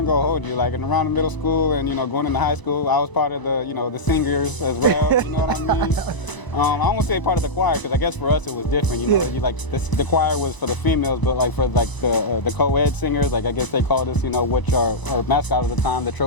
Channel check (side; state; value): right; late; 1.0 ms